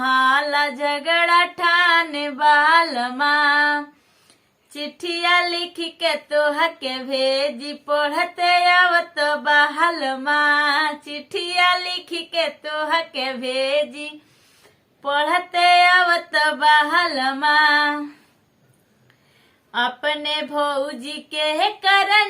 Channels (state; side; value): identical; both; correlation 1.00